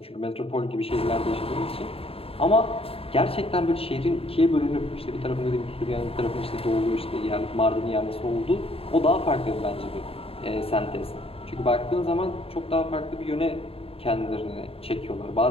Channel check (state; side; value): late; right; 0.27 ms